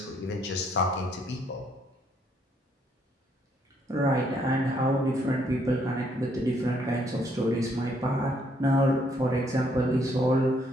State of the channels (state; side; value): normal; both; correlation 0.70